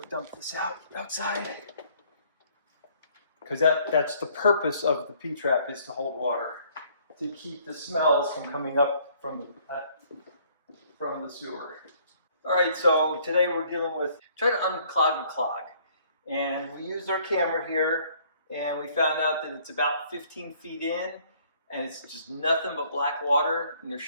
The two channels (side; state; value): both; inverted; correlation -0.61